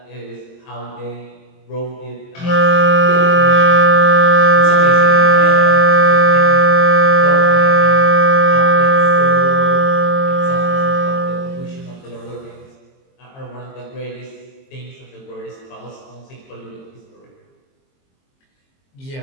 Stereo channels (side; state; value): right; late; 22 ms